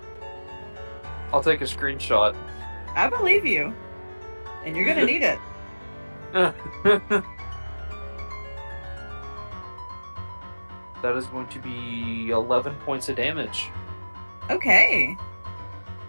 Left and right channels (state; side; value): inverted; both; correlation -1.00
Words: I'll take a screenshot. I believe you. And you're gonna need it. That is going to be 11 points of damage. Okay.